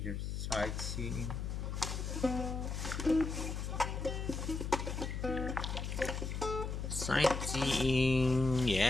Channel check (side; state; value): left; noise; hum, 3 dB below the sound